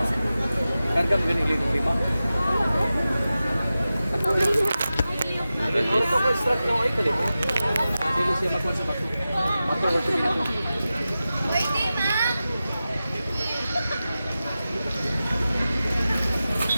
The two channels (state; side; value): inverted; both; correlation -0.94